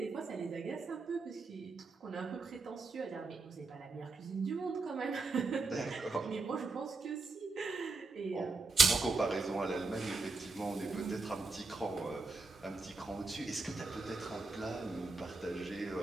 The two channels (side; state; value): left; quieter; 3.7 dB